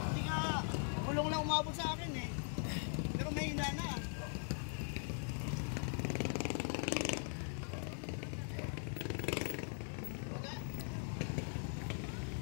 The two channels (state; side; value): silent; right; 50 dB below the other